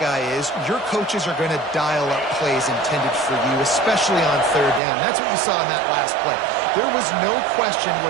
is, your coaches are going to dial up plays intended for you, especially on third down. That's what you saw in that last play. There was no question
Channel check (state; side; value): drops out; left; at 4.8 s